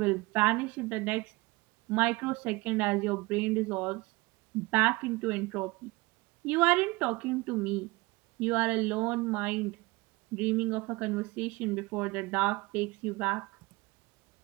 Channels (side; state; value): left; quieter; 23.1 dB